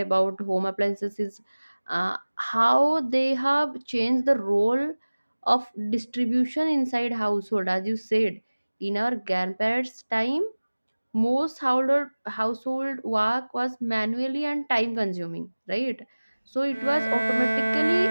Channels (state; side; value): inverted; both; correlation -1.00